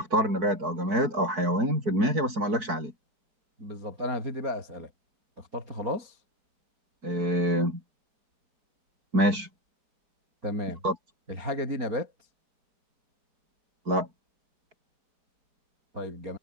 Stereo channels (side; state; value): left; late; 4.6 ms